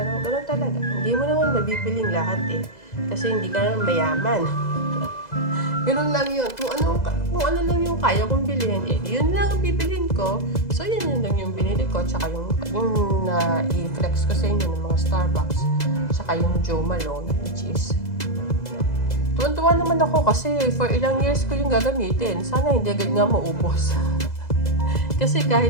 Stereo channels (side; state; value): right; late; 2.0 ms